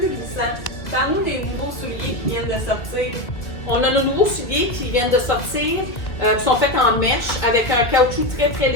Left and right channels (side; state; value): right; late; 1.8 ms